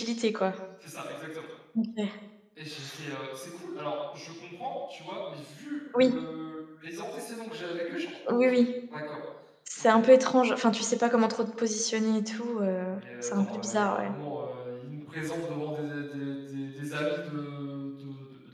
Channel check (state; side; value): identical; both; correlation 1.00